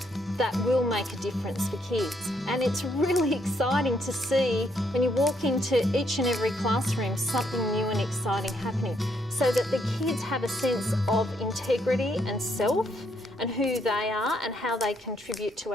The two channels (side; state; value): both; normal; correlation 0.73